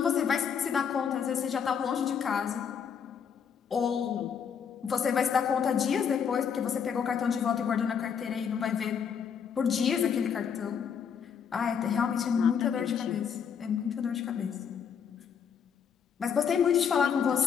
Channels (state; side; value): quieter; right; 7.2 dB